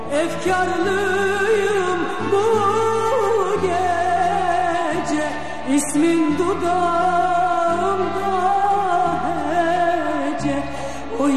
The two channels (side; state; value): both; identical; correlation 1.00